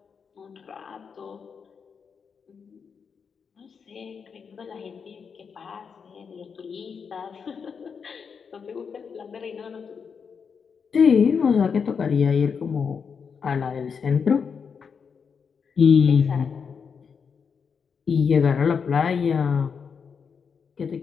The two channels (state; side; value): quieter; right; 6.2 dB